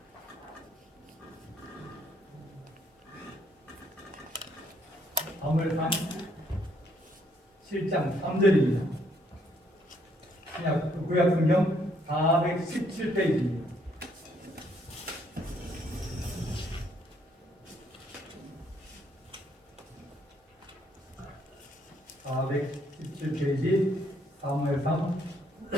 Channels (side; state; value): both; normal; correlation 0.69